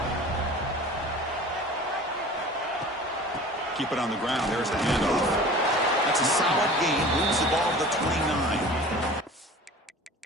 Keep it on the ground. There's the handoff. That's a solid gain. Moves the ball to the 29.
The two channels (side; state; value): both; normal; correlation 0.41